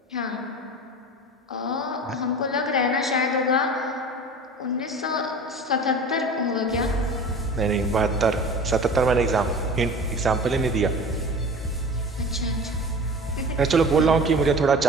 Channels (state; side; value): normal; both; correlation 0.37